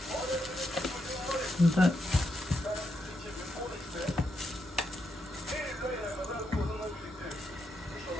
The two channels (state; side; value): normal; both; correlation 0.82